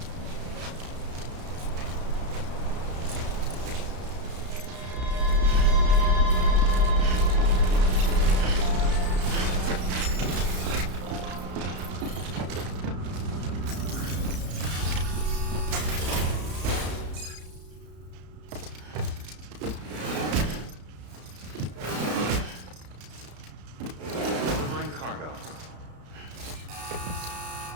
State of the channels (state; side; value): late; left; 33 ms